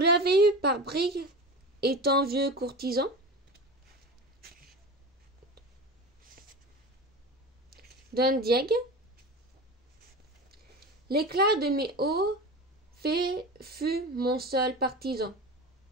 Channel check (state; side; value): normal; both; correlation 0.29